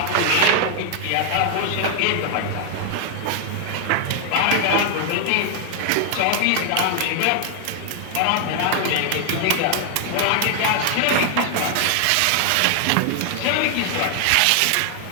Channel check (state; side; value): different; both; correlation 0.00